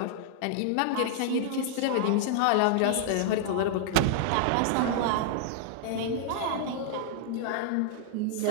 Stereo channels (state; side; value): different; both; correlation -0.01